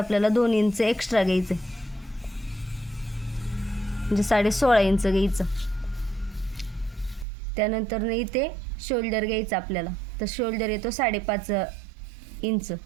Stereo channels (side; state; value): left; drops out; at 7.2 s